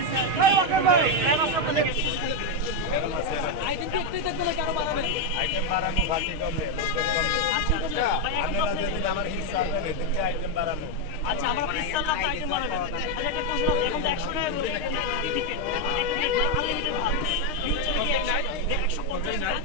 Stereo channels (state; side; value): late; left; 6.5 ms